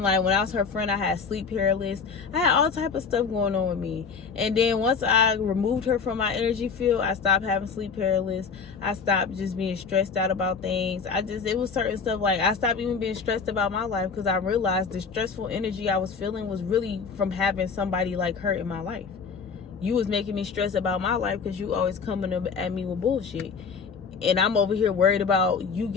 like, when I was her friend, I had sleep paralysis. I had all type of stuff going on with me. And then once I removed her from my energy field, I stopped having sleep paralysis. I stopped just being stressed out about things. It was certain stuff, like, I stopped even being stressed about my life, because I realized the stressful energy I was feeling was really from having somebody like her in my life. You was making me stress about my life because you always coming up at me with bullshit. And I'm over here worried about you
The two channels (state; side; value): quieter; right; 5.6 dB